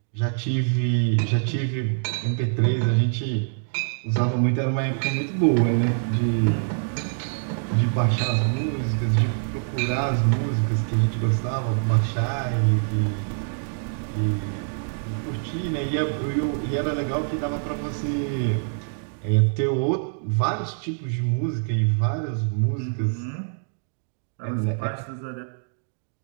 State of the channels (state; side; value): silent; left; digital silence